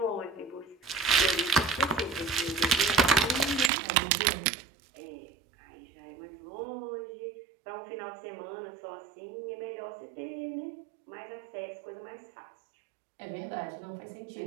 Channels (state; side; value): drops out; left; at 3.7 s